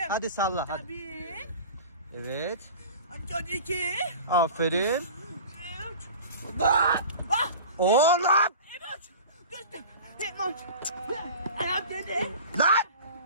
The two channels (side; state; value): both; inverted; correlation -0.38